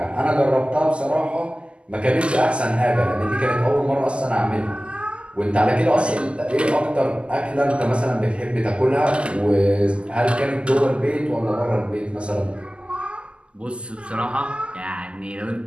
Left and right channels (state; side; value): late; left; 0.053 ms